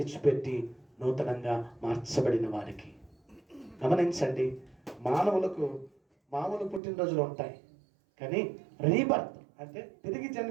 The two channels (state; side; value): drops out; left; at 6.8 s